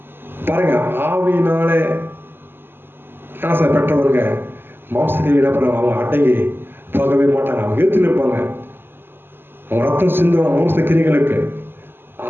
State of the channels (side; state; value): left; late; 0.10 ms